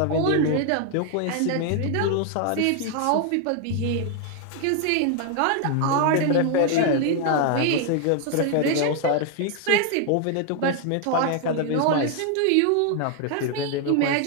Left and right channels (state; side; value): different; both; correlation 0.00